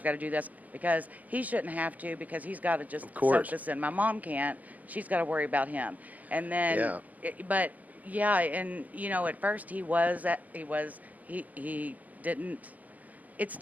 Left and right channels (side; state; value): left; late; 0.078 ms